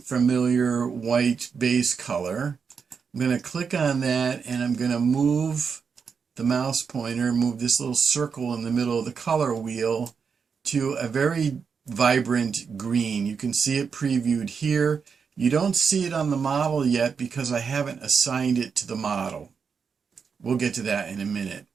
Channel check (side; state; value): left; quieter; 6.0 dB